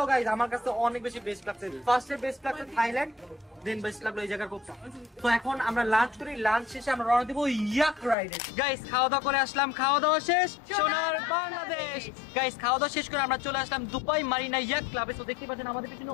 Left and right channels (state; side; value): drops out; right; at 8.2 s